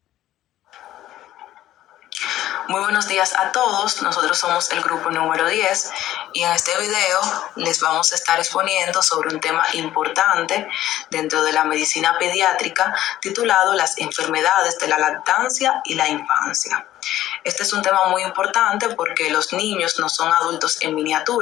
Muy buenos días a todos, nosotros somos el grupo número 10 y en este video les vamos a estar exponiendo sobre un tema importante dentro de la medicina pediátrica titulado las enfermedades de la lactancia y la infancia. Este es un tema muy importante porque los niños no son adultos en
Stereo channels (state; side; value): quieter; right; 13.6 dB